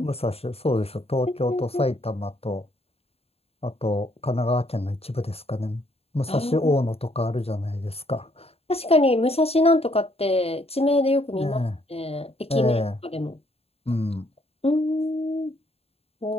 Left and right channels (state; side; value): late; right; 0.29 ms